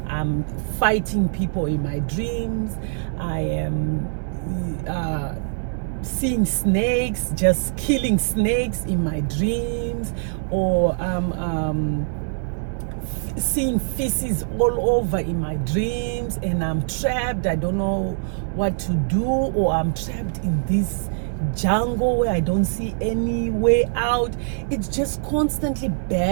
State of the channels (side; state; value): left; silent; digital silence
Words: I'm fighting people in my dreams. I am seeing snakes, just killing snakes in my dreams, or seeing feces all over in my dreams, and I'm trapped. I don't know what to do, or I'm trapped in this jungle where I don't see any way out. It's just constantly